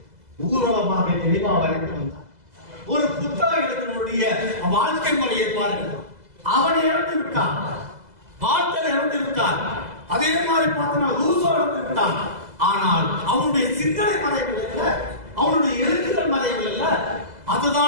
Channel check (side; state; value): left; late; 2.0 ms